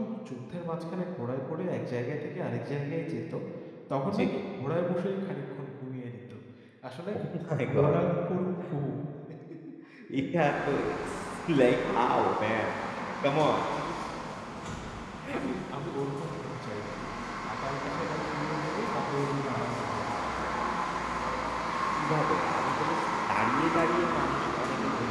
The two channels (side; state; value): both; identical; correlation 1.00